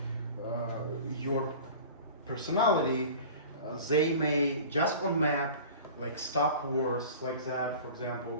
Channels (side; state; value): both; inverted; correlation -0.39